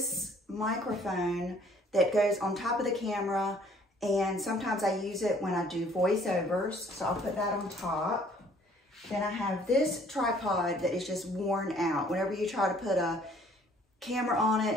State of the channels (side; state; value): both; normal; correlation 0.59